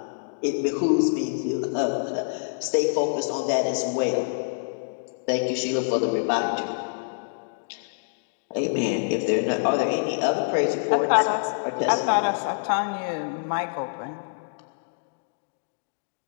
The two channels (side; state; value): right; silent; digital silence